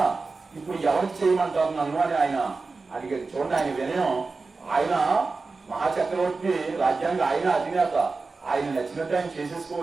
ఇప్పుడు ఎవరికి చేయమంటారు నన్ను అని ఆయన అడిగాడు. చూడండి ఆయన వినయం. ఆయన మహాచక్రవర్తి, రాజ్యానికి ఆయన అధినేత, ఆయన నచ్చినట్టు ఆయన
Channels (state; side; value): quieter; left; 4.0 dB